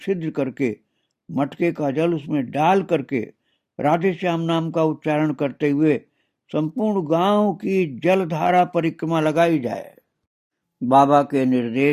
करके मटके का जल उसमें डाल करके राधे श्याम नाम का उच्चारण करते हुए संपूर्ण गांव की जलधारा परिक्रमा लगाई जाए। बाबा के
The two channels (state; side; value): identical; both; correlation 1.00